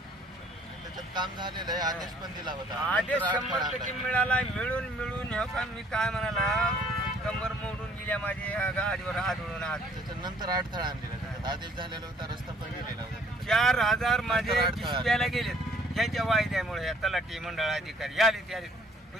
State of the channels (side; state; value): both; normal; correlation 0.59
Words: त्याच्यात काम झालेलं आहे. आदेश पण दिला होता. आदेश नंतर 100% मिळाला. मिळून हे का मी काय म्हणाला कंबर मोडून गेल्या माझ्या गाडीवर आदळून त्याच्यानंतर अडथळा आणलेला. त्याच्यात आदेश झालेला होता. रस्ता पण गेलेला होता. 4,000 माझे डिस्प्याला गेलेत ह्याच्या वायद्यामुळे. या तलाठी मंडळ अधिकारी आले ते आले